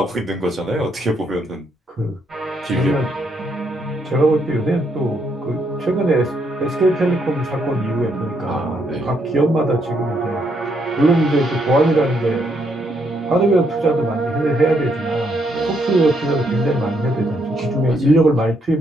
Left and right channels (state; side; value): normal; both; correlation 0.74